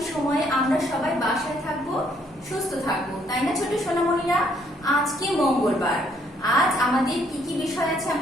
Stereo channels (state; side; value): normal; both; correlation 0.67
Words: সময়ে আমরা সবাই বাসায় থাকবো, সুস্থ থাকবো, তাই না ছোট সোনামণিরা? আজকে মঙ্গলবার। আজ আমাদের কি কি বিষয় আছে